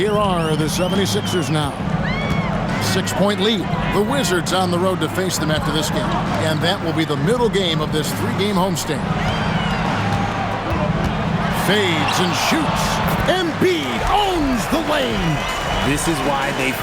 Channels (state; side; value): identical; both; correlation 1.00